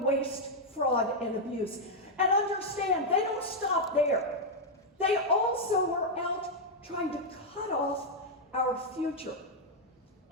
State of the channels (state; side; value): normal; both; correlation -0.02